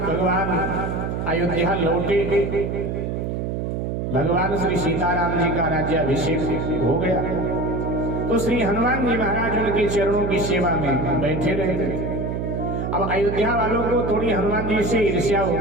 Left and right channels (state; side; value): noise; right; hum, 2 dB below the sound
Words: भगवान अयोध्या लौटे, भगवान श्री सीताराम जी का राज्याभिषेक हो गया, तो श्री हनुमान जी महाराज उनके चरणों की सेवा में बैठे रहे। अब अयोध्या वालों को थोड़ी हनुमान जी से ईर्ष्या हो